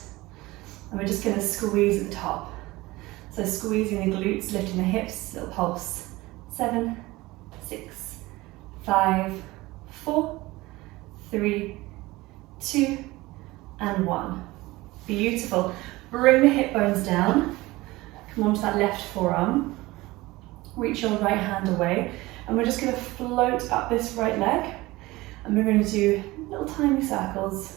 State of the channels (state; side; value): quieter; left; 20.0 dB